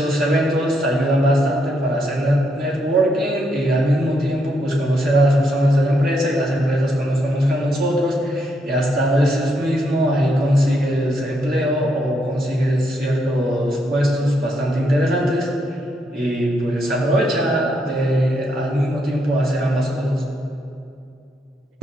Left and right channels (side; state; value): both; normal; correlation 0.77